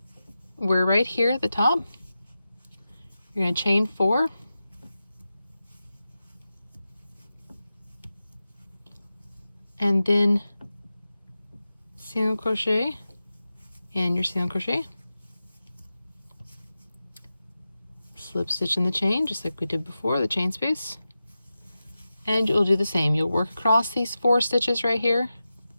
we're right here at the top. You're going to chain 4. And then single crochet and your single crochet. Slip stitch in the chain, just like we did before, the chain space. And you'll do the same. You'll work across these 4 stitches right here.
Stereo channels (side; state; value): both; inverted; correlation -0.92